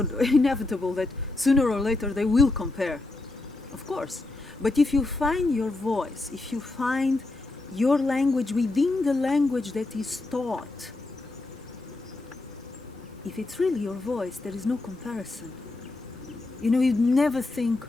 that sooner or later they will compare, of course. But if you find your voice, if you find your language within the language that is taught, if it's really your voice, there is no comparison. You'd never think,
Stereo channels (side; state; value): right; quieter; 3.1 dB